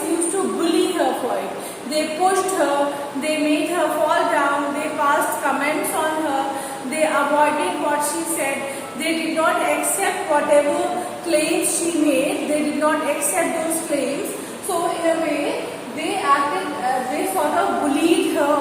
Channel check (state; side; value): identical; both; correlation 1.00